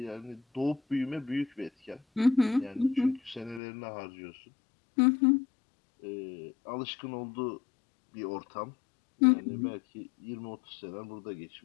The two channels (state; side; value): drops out; right; at 3.6 s